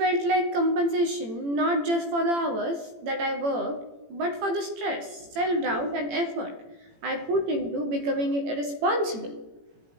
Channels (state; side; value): late; left; 18 ms